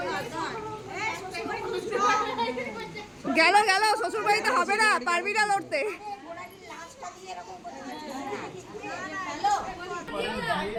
গেল গেল, শ্বশুর বাড়িতে হবে না, পারবি না লড়তে।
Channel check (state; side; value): identical; both; correlation 1.00